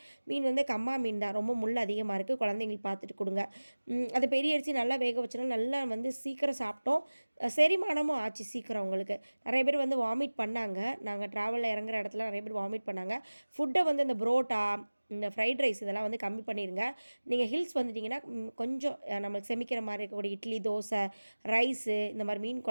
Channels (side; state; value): both; inverted; correlation -1.00